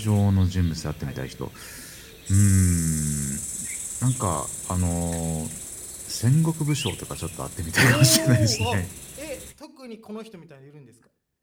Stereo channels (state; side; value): identical; both; correlation 1.00